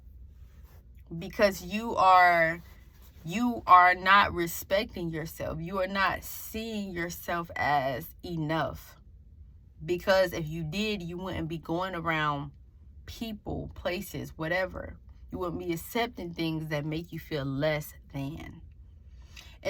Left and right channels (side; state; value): both; identical; correlation 1.00